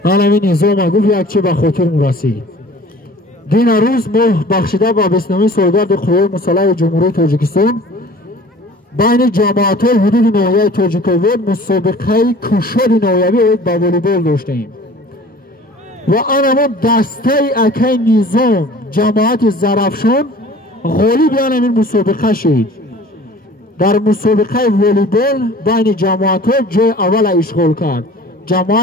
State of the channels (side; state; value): both; normal; correlation 0.46